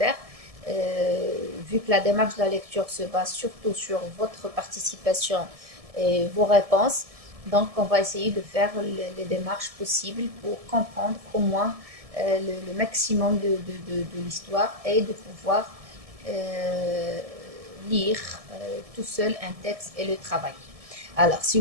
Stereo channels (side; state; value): left; late; 1.7 ms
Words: vu que la démarche de la lecture se base surtout sur votre participation et vos réponses, donc on va essayer de faire les démarches possibles pour comprendre au moins le maximum de l'histoire et de pouvoir euh, lire tout seul un texte et le travailler. Alors, si